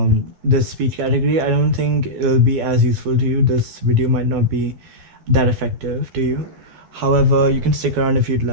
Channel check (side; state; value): left; late; 12 ms